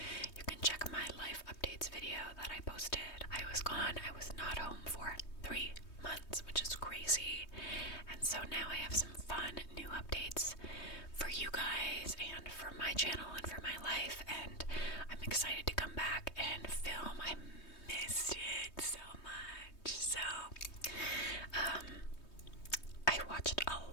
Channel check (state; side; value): late; right; 3.2 ms